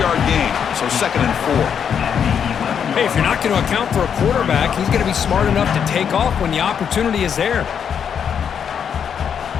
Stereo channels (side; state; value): right; quieter; 7.7 dB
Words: gain, so second and 4. Hey, if you're not going to account for a quarterback, he's going to be smart enough to take off when the opportunity is there.